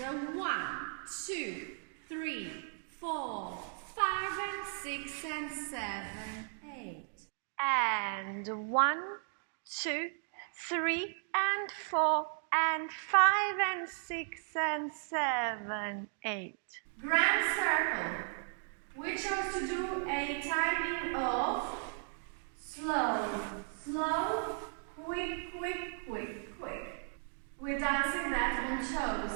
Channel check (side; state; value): left; silent; 54 dB below the other